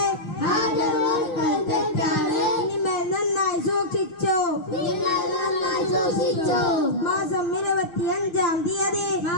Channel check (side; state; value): right; late; 6.4 ms